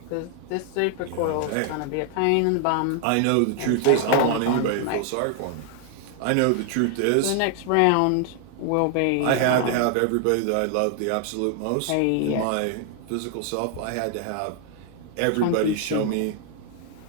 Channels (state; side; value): different; both; correlation 0.00